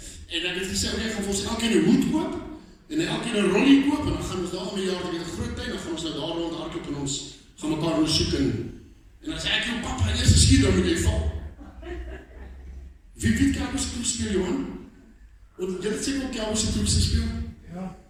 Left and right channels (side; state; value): both; identical; correlation 1.00